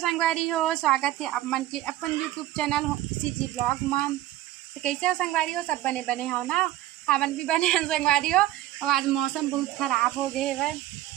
हो। स्वागत है आप मन के अपन यूट्यूब चैनल सीजी ब्लॉग मन। तो कैसे हो संगवारी हो? सब बने बने हो ना? हमन भी बने हैं संगवारी हो। और आज मौसम बहुत खराब हो गए है।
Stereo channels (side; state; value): left; quieter; 14.9 dB